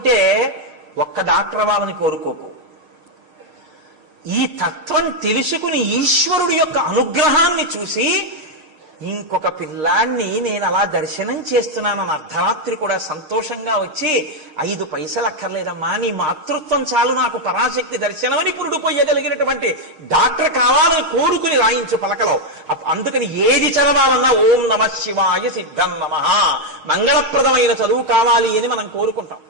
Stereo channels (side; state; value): left; late; 6.5 ms